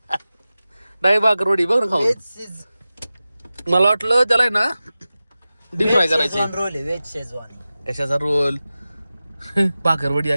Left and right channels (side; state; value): both; inverted; correlation -0.96